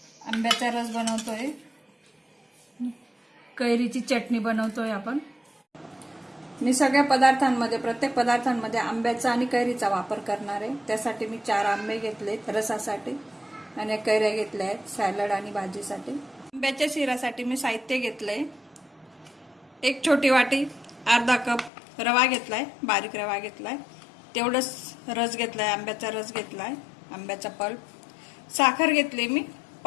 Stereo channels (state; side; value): drops out; right; at 21.7 s